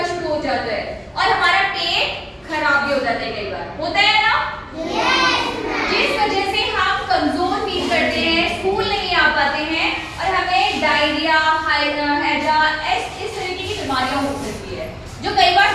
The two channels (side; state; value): both; identical; correlation 1.00